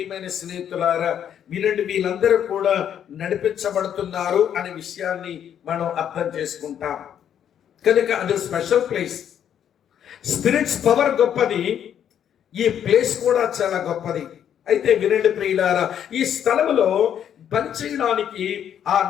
స్నేహితులారా, వినండి వీళ్ళందరూ కూడా నడిపించబడుతున్నారు అనే విషయాన్ని మనం అర్థం చేసుకుంటాం. కనుక అది స్పెషల్ ప్లేస్. స్పిరిట్స్ పవర్ గొప్పది, ఈ ప్లేస్ కూడా చాలా గొప్పది. అయితే వినండి ప్రియులారా, ఈ స్థలంలో పనిచేయడానికి ఆ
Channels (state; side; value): quieter; right; 9.4 dB